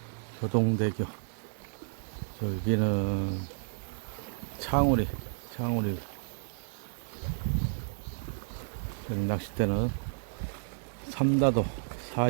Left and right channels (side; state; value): left; silent; digital silence